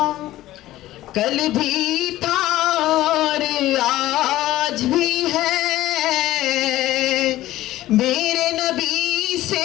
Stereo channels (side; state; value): right; quieter; 15.4 dB